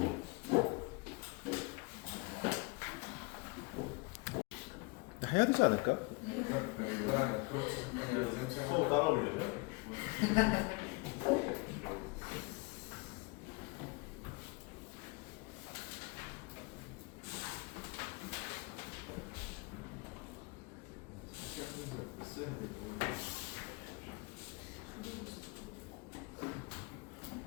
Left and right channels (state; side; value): quieter; right; 28.3 dB